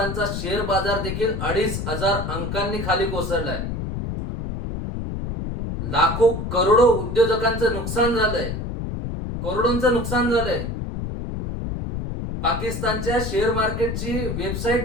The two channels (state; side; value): noise; left; rumble, 4 dB below the sound